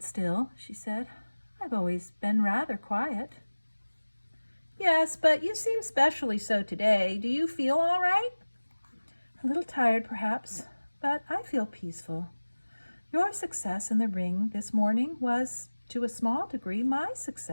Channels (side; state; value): both; inverted; correlation -1.00